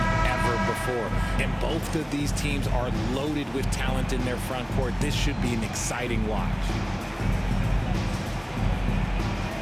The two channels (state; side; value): identical; both; correlation 1.00